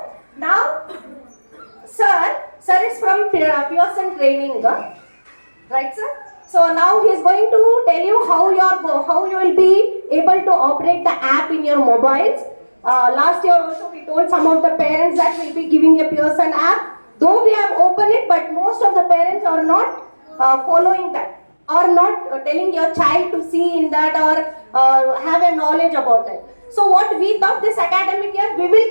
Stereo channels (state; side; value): inverted; both; correlation -1.00